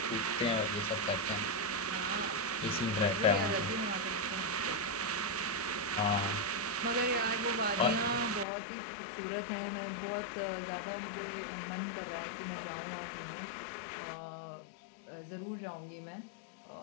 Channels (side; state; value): right; drops out; at 8.5 s